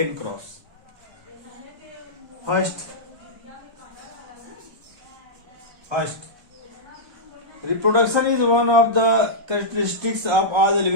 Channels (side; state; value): left; late; 1.3 ms